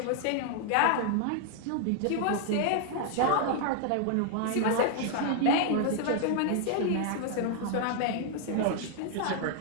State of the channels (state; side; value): different; both; correlation 0.00